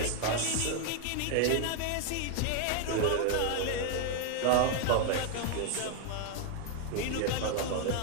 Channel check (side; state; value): both; different; correlation 0.01